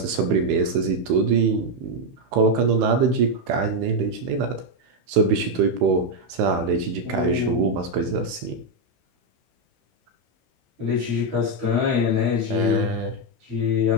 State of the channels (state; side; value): late; left; 15 ms